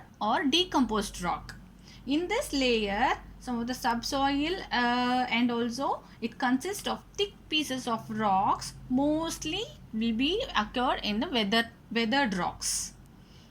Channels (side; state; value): both; identical; correlation 1.00